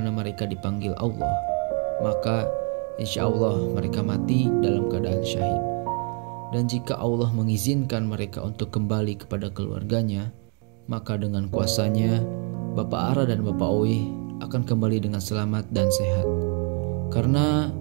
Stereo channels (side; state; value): left; quieter; 38.6 dB